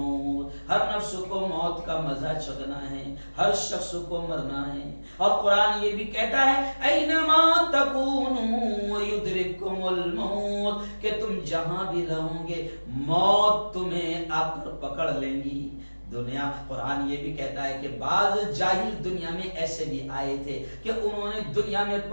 ہر نفس کو موت کا مزہ چکھنا ہے، ہر شخص کو مرنا ہے. اور قرآن یہ بھی کہتا ہے اینما تکونوا یدرککم الموت، کہ تم جہاں بھی رہو گے موت تمہیں آ کر پکڑ لیں گی. دنیا قرآن یہ بھی کہتا ہے کہ بعض جاہل دنیا میں ایسے بھی آئے تھے کہ انہوں نے دنیا میں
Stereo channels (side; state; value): both; inverted; correlation -1.00